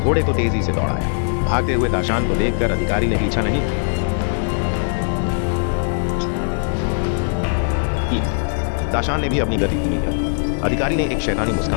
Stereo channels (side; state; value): right; silent; digital silence